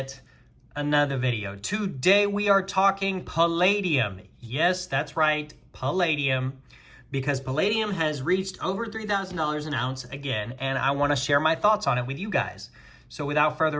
another video. Today we are talking palladium. Yes, that's right, palladium. Because palladium has reached over $3,000 an ounce again, and I want to share my thoughts on it with you guys. So without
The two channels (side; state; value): both; identical; correlation 1.00